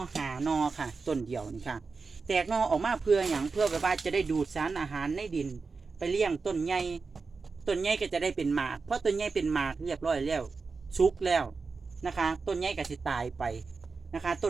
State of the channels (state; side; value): quieter; left; 4.5 dB